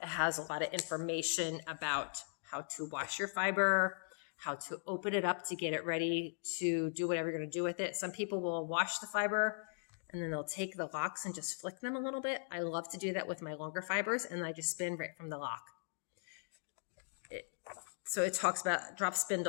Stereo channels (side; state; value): right; silent; digital silence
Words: it has a lot of information about how to wash your fiber, how to open it up to get it ready to do whatever you're going to do with it. Some people will wash the fiber and then they'll take the locks and just flick them a little bit. I love to do that with my longer fibers, and I just spin right from the lock. So it talks about drop